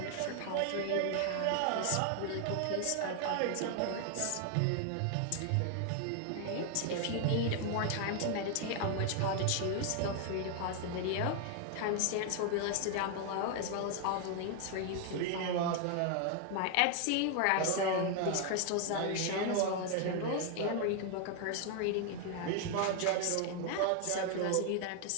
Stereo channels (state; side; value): different; both; correlation 0.00